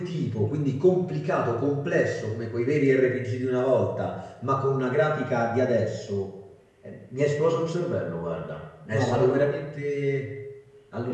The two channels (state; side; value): identical; both; correlation 1.00